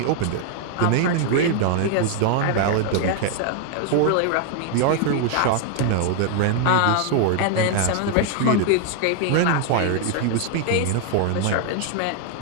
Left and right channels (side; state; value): both; different; correlation 0.00